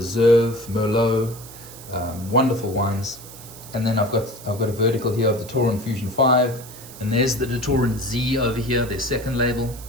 Merlot, wonderful wines. And then I've got a vertical here of the Taurin Fusion 5, and there's the Taurin Z over here, their second label.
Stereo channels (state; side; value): noise; right; hiss, 17 dB below the sound